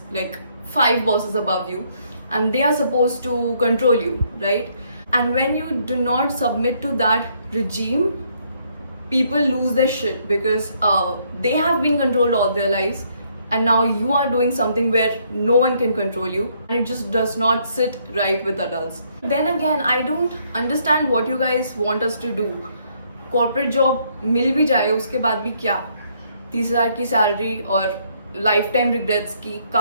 like 5 bosses above you, and they are supposed to control you, right? And when you do not submit to that regime, people lose their shit because they have been controlled all their lives, and now you are doing something where no one can control you, and it just does not sit right with adults. Then again, I don't understand what you guys want us to do. Corporate job मिल भी जाए, उसके बाद भी क्या? 30,000 की salary और life time regrets की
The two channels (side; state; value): both; inverted; correlation -0.69